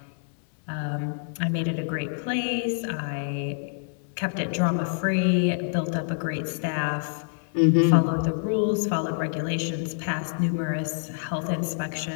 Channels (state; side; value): silent; right; 60 dB below the other